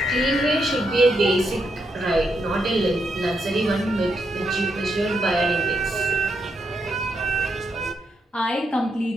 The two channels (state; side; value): normal; both; correlation 0.80